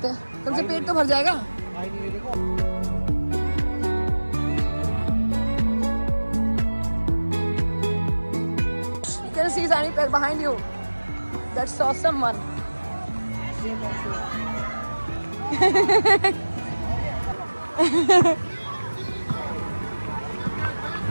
हैं. कम से पेट तो भर जाएगा. You can see Sani behind you. That's awesome one.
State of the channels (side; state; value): both; inverted; correlation -1.00